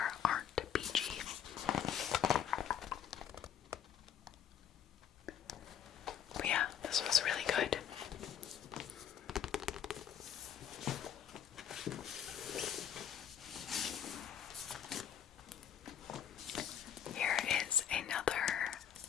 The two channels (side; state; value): right; quieter; 9.1 dB